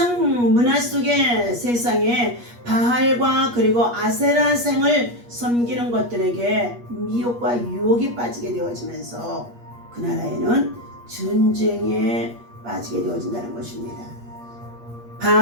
문화 속에 세상에 바알과 그리고 아세라생을 섬기는 것들에게 미혹과 유혹에 빠지게 되어지면서 그 나라에는 전쟁에 빠지게 되어진다는 것입니다.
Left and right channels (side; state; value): left; late; 8.4 ms